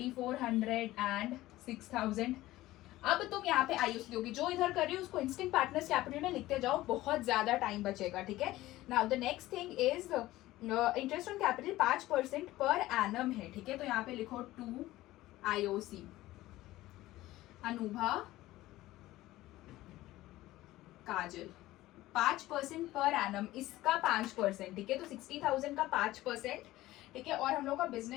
एंड 6000। अब तुम यहाँ पे आईओसी दोगे, जो इधर कर रही हो उसको इंस्टेंट पार्टनर्स कैपिटल में लिखते जाओ, बहुत ज्यादा टाइम बचेगा, ठीक है। Now the next thing is interest on capital 5% per annum है, ठीक है, तो यहाँ पे लिखो 2 आईओसी अनूभा काजल, 5% पर एनम, इसका 5%, ठीक है, तो 60,000 का 5%, ठीक है। और हम लोग का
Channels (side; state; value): right; quieter; 16.7 dB